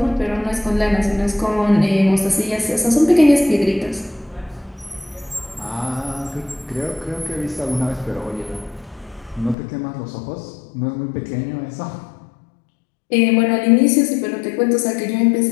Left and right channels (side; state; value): right; drops out; at 9.6 s